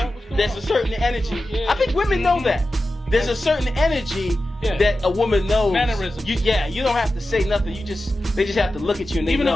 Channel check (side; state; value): both; normal; correlation 0.93